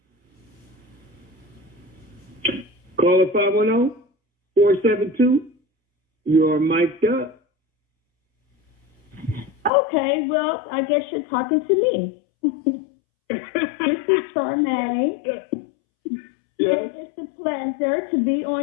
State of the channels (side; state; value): right; drops out; at 9.7 s